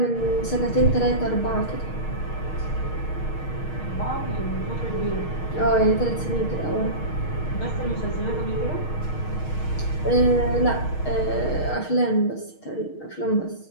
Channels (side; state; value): right; late; 6.4 ms